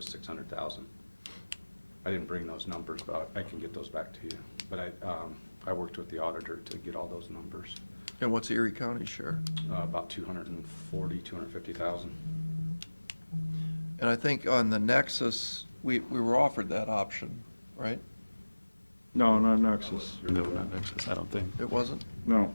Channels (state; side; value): inverted; both; correlation -1.00